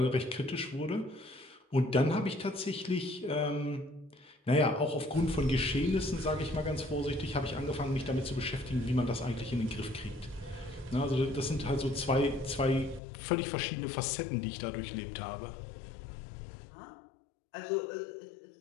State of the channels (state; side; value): drops out; right; at 13.0 s